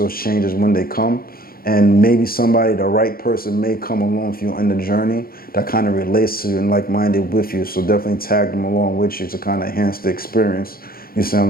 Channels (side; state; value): right; late; 0.43 ms